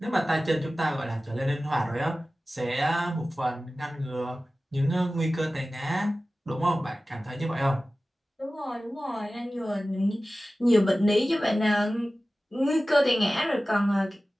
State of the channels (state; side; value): normal; both; correlation 0.96